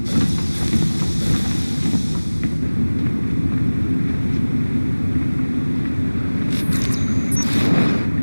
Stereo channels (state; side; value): inverted; both; correlation -1.00